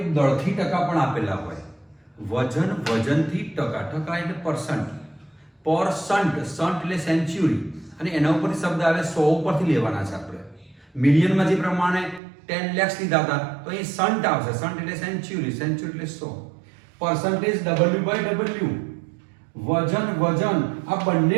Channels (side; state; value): left; drops out; at 12.2 s